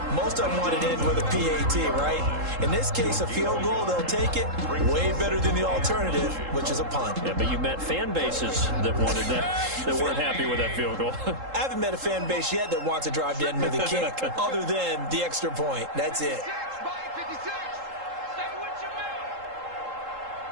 Most of them wanted to end with a PAT, right? In this case, a field goal, they'll take it. Way better than the alternative, which is a punt. Yeah, but you met fan bases that wanted that, that weren't happy with that field goal. I haven't met a fan base yet that wants to drive to end with a kick, other than the extra point. That's it.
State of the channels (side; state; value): left; late; 3.7 ms